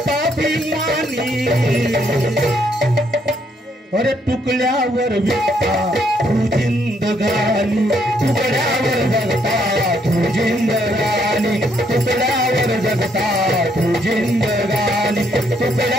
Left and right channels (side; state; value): both; normal; correlation 0.72